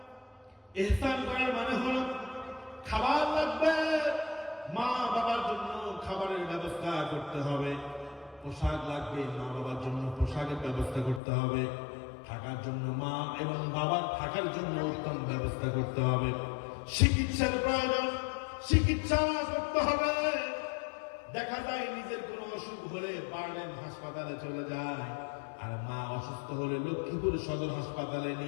ইহসান করার মানে হলো খাবার লাগবে, মা রাখতে হবে, পোশাক লাগবে, মা বাবার জন্য পোশাকের ব্যবস্থা করতে হবে, থাকার জন্য মা এবং বাবার থাকার জন্য উত্তম ব্যবস্থা করতে হবে, চিকিৎসার প্রয়োজন, চিকিৎসা করতে হবে। দেখা যায় নিজের কোনো অসুখ হলে বার্ডেন হাসপাতালে চলে যায়, আর মা অসুস্থ হলে লক্ষ্মীপুর সদর হাসপাতালে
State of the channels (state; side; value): drops out; right; at 11.2 s